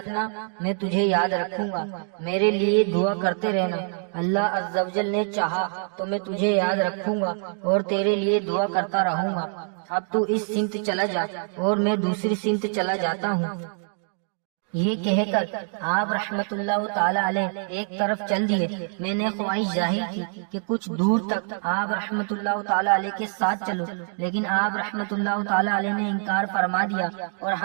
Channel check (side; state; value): left; silent; 59 dB below the other